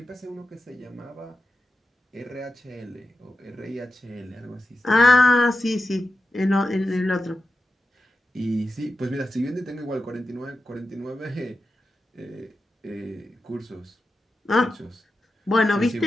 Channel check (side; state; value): both; normal; correlation 0.91